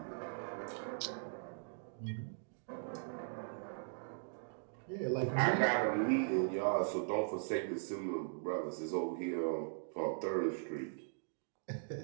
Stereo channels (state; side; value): silent; left; digital silence